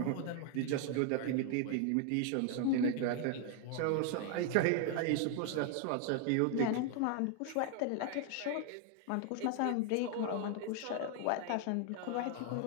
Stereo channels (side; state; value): both; different; correlation 0.00